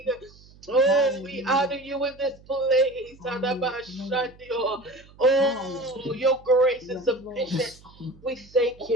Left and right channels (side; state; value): right; noise; hum, 25 dB below the sound